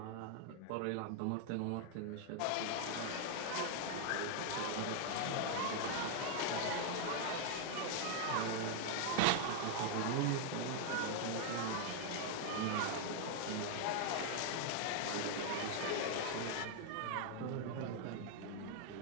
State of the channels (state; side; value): different; both; correlation 0.00